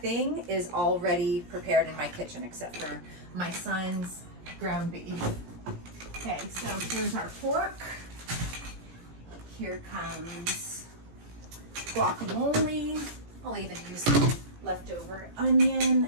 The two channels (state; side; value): late; left; 17 ms